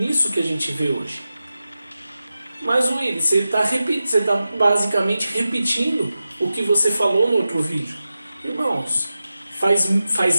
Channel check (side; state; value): both; inverted; correlation -0.92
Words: que a gente vê hoje. Mas Willy, você está basicamente repetindo o que você falou no outro vídeo. Irmãos,